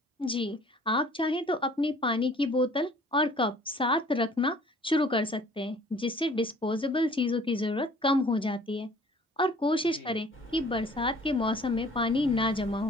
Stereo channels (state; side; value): normal; both; correlation 0.53